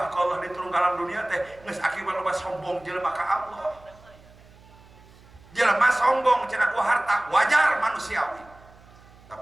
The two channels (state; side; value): noise; right; hum, 25 dB below the sound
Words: ka Allah diturun ka alam dunia teh geus akibat loba sombong jelema ka Allah. Jelema sombong cenah ku harta wajar manusiawi.